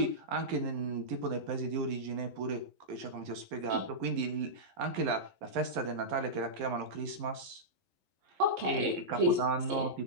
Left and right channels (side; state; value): left; late; 11 ms